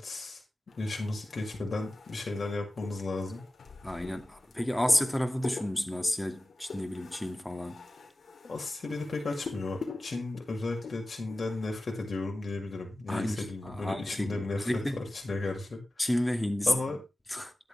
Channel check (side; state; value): both; normal; correlation 0.95